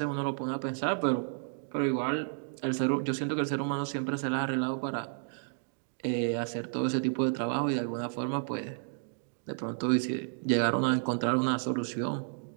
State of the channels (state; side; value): silent; left; digital silence